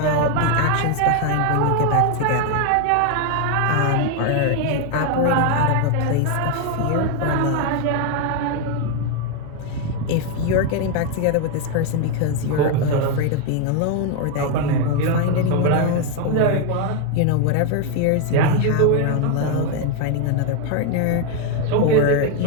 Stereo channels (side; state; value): both; different; correlation 0.01